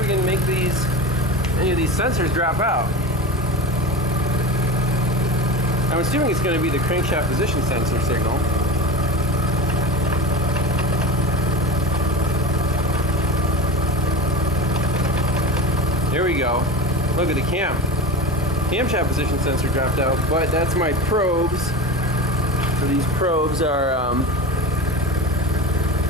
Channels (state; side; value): normal; both; correlation 0.28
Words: can make any of these sensors drop out. I'm assuming it's going to be the crankshaft position sensor signal. There we go. Look at the camshaft position sensor dropped out, but that's my probes. So these probes are